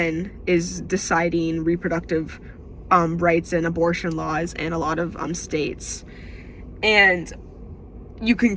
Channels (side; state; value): both; identical; correlation 1.00